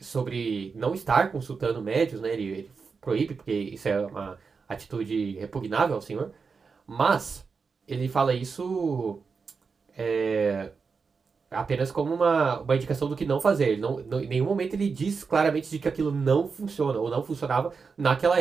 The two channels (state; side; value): quieter; left; 5.1 dB